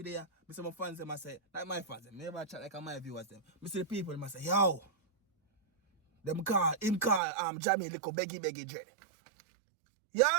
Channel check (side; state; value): left; drops out; at 7.2 s